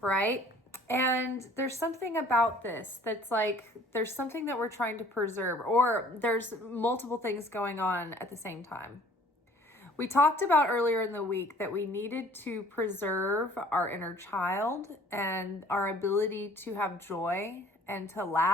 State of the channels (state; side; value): normal; both; correlation 0.53